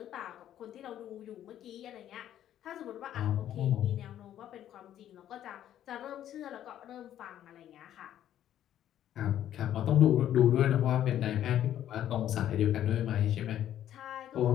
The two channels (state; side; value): quieter; right; 11.3 dB